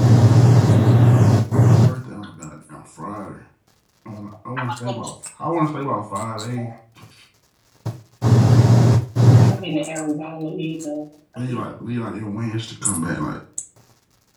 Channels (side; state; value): both; identical; correlation 1.00